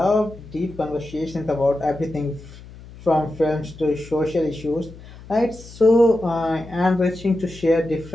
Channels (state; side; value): noise; left; hum, 18 dB below the sound